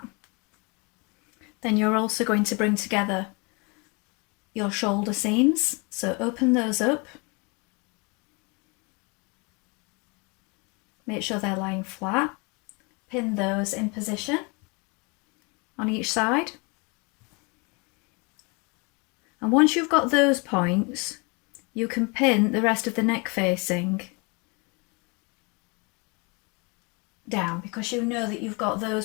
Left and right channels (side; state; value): right; quieter; 30.4 dB